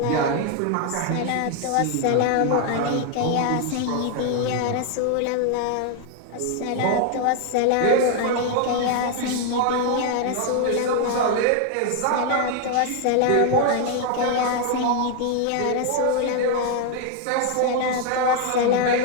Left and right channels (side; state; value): both; different; correlation 0.00